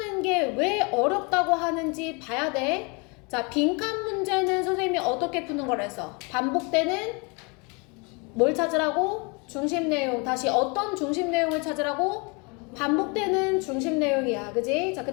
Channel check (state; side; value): quieter; right; 31.0 dB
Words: 게 왜 어렵다고 하는지 봐야 돼. 자, 빈칸 문제는 선생님이 어떻게 푸는 걸 해서 반복되는 뭘 찾으라고? 중심 내용. 다시 어떤 중심 내용을 찾으라고? 반복되는 중심 내용이야. 그지? 자, 그